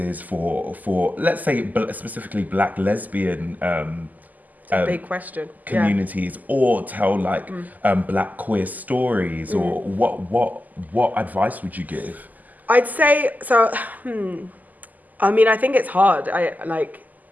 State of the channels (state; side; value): late; left; 0.081 ms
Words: for let's say specifically Black lesbian it's a big question. Communities, or tell like Black queer stories, or what advice would you give? I'd say so. I mean, I think it's hard.